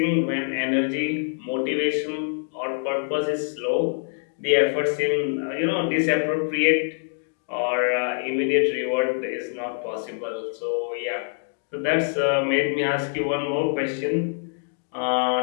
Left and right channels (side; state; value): right; silent; digital silence